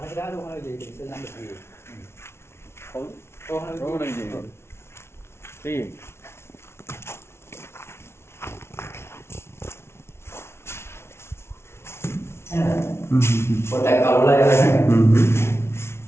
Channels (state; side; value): late; right; 0.12 ms